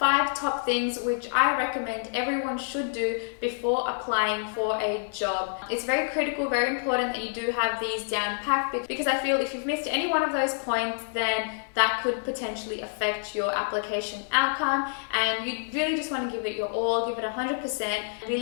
top things which I recommend everyone should do before applying for a job. It's very critical, very important that you do have these down packed, because I feel if you've missed any one of those points, then that could potentially affect your application outcome, and you really just want to give it your all, give it 100%,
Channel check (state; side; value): silent; right; 60 dB below the other